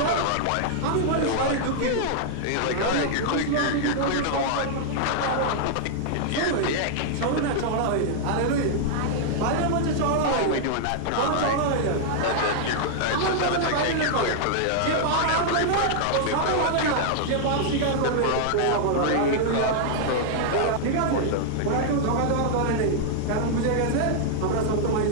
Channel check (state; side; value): different; both; correlation -0.01